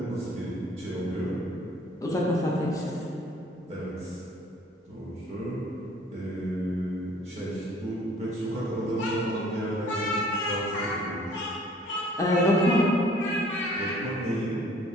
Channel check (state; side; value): normal; both; correlation 0.55